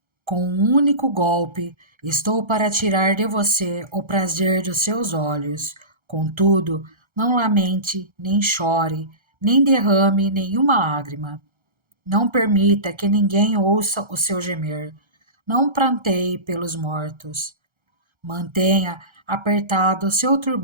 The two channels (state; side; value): late; left; 1.3 ms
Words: com um único golpe estou para tirar de você o prazer dos seus olhos. Contudo, não lamente, nem chore, nem derrame nenhuma lágrima. Não permita que ninguém ouça o seu gemer. Não pranteie pelos mortos. Mantenha apertado o seu